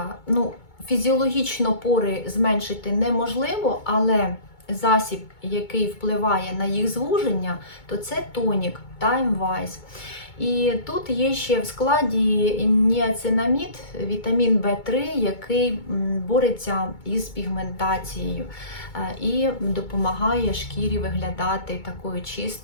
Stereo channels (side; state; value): right; late; 2.2 ms